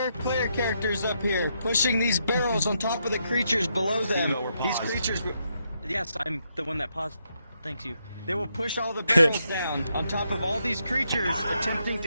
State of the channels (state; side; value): inverted; both; correlation -0.79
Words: player characters up here, pushing these barrels on top of the creatures below them. These creatures. Yes, I'm the one that paused. Thank you. They will push all the barrels down on top of all these creatures attempting